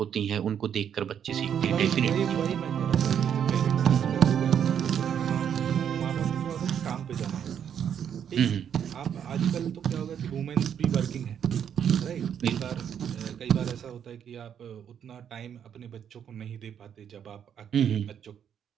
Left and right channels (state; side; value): quieter; left; 8.6 dB